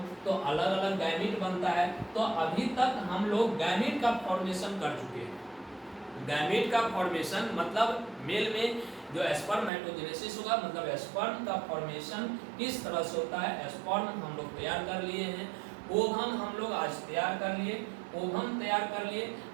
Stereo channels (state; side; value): drops out; left; at 9.7 s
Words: तो अलग अलग गैमीट बनता है। तो अभी तक हम लोग गैमीट का फॉर्मेशन कर चुके हैं। गैमीट का फॉर्मेशन मतलब मेल में जो स्पर्मेटोजेनेसिस होगा, मतलब स्पर्म का फॉर्मेशन किस तरह से होता है, स्पर्म हम लोग तैयार कर लिए हैं, ओवम हम लोग आज तैयार कर लिए, ओवम तैयार कर लिए।